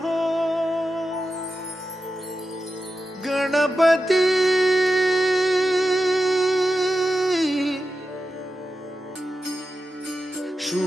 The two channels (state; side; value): normal; both; correlation 0.91